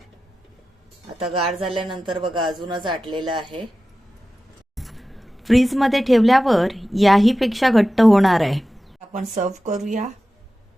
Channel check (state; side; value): normal; both; correlation 0.94